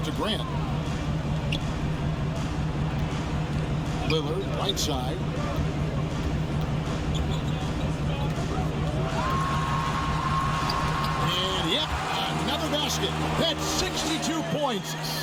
to Grant. Lillard, right side. And yep, another basket. That's 62 points.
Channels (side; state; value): both; identical; correlation 1.00